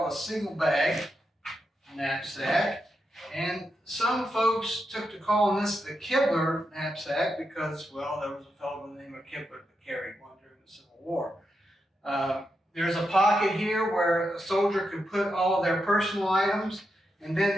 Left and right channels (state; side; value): normal; both; correlation 0.85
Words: a single bag knapsack. And some folks took to calling this the Kibler knapsack because, well, there was a fellow by the name of Kibler that carried one during the Civil War. There's a pocket here where a soldier could put all of their personal items, and